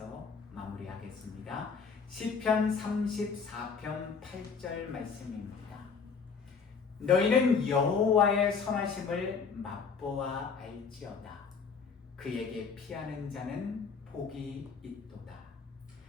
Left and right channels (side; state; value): right; quieter; 5.6 dB